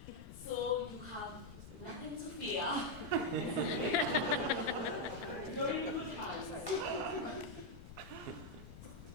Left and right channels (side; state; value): left; noise; rumble, 14 dB below the sound